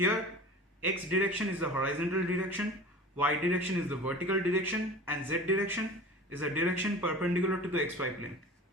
x direction is the horizontal direction, y direction is the vertical direction, and z direction is the direction perpendicular to the xy plane.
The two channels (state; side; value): normal; both; correlation 0.38